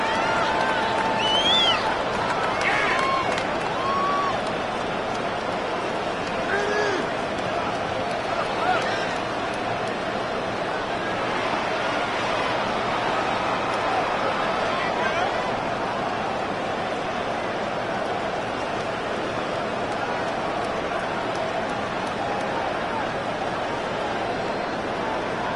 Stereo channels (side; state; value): both; identical; correlation 1.00